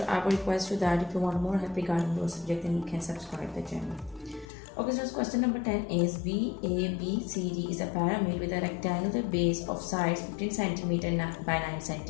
I will request you that if you want more help regarding your subject, then you can subscribe the channel. Okay, so question number 10 is VABCD is a pyramid with a rectangular base of sides 15 cm by 9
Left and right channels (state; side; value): drops out; right; at 4.5 s